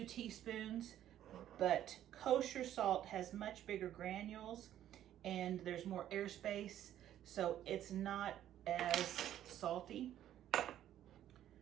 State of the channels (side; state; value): left; quieter; 11.7 dB